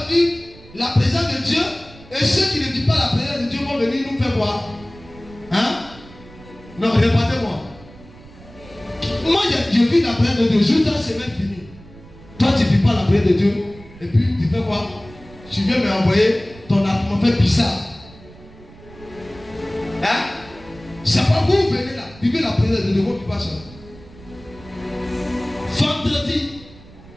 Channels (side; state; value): right; noise; rumble, 21 dB below the sound